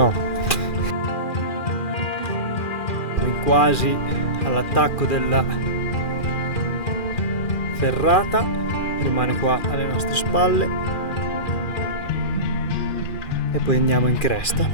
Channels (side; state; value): right; late; 2.4 ms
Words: Quasi all'attacco della ferrata, rimane qua alle nostre spalle e poi andiamo in cresta.